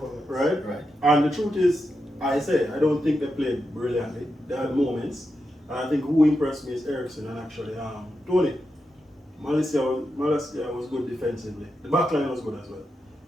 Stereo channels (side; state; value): both; normal; correlation 0.87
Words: Right? And the truth is, I don't think they played brilliantly. They had moments. And I think who impressed me is Ericsson and actually Tony. Malaysia was good defensively. The back line was good as well.